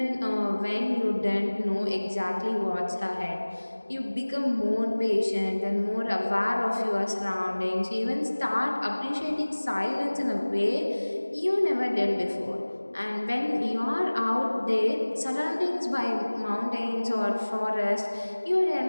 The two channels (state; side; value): inverted; both; correlation -1.00